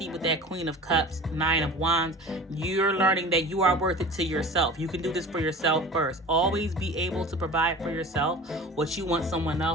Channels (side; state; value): both; normal; correlation 0.39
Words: with that Queen of Cups, Nine of Wands. You're learning that you are worth it to yourself. You can do this for yourself first. Always be able to provide for yourself what you want someone